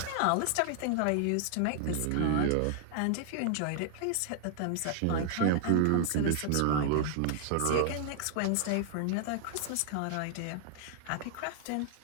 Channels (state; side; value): different; both; correlation 0.00